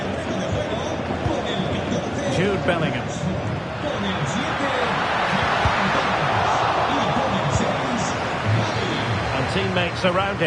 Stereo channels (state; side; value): identical; both; correlation 1.00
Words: Jude Bellingham. And teammates around